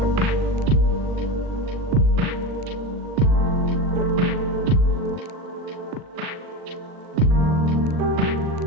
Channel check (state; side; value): late; left; 40 ms